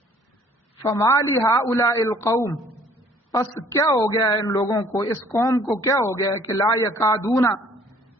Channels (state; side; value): normal; both; correlation 0.57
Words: فما لہؤلاء القوم پس کیا ہو گیا ہے ان لوگوں کو اس قوم کو کیا ہو گیا ہے کہ لا یکادون